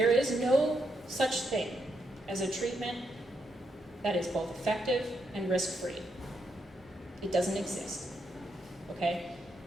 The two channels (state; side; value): normal; both; correlation 0.80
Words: is no such thing as a treatment that is both effective and risk-free. It doesn't exist, okay?